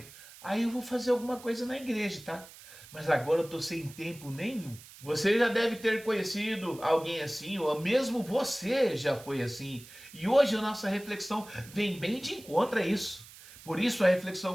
Aí eu vou fazer alguma coisa na igreja, tá? Mas agora eu tô sem tempo nenhum. Você já deve ter conhecido alguém assim, ou mesmo você já foi assim. E hoje a nossa reflexão vem bem de encontro a isso. Por isso a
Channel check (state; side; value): noise; right; hiss, 19 dB below the sound